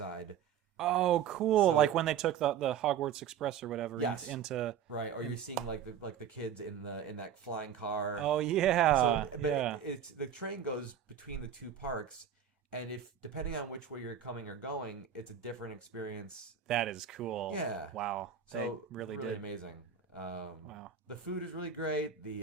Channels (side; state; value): left; quieter; 8.4 dB